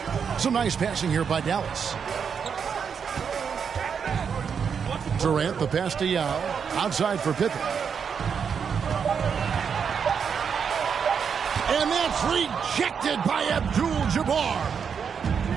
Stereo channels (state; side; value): quieter; left; 6.7 dB